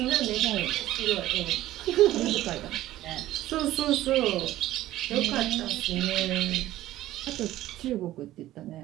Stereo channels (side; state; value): left; quieter; 14.8 dB